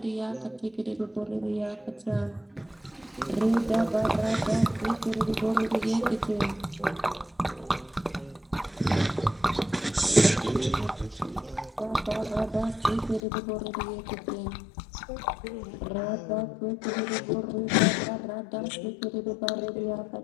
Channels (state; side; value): drops out; right; at 13.2 s